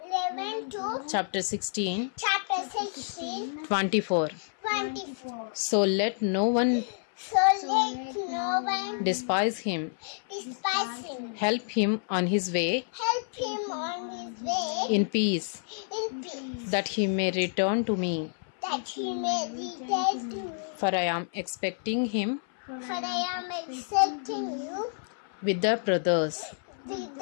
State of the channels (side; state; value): right; silent; 59 dB below the other